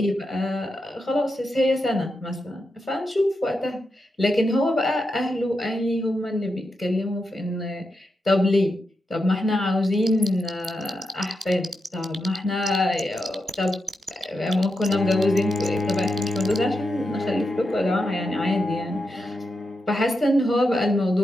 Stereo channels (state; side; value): normal; both; correlation 0.86